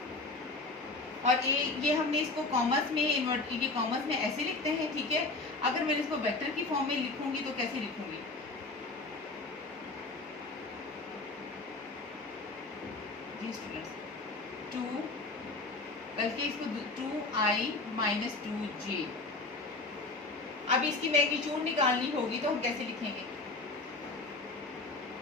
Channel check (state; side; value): quieter; right; 3.3 dB